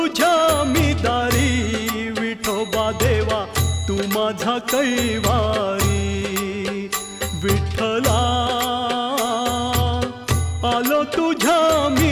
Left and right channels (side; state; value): both; identical; correlation 1.00